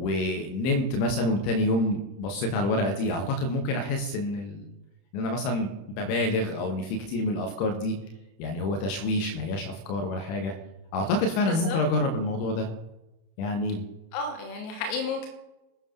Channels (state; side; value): late; right; 31 ms